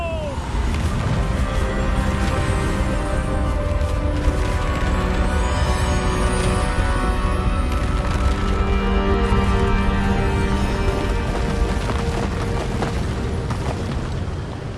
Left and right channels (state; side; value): identical; both; correlation 1.00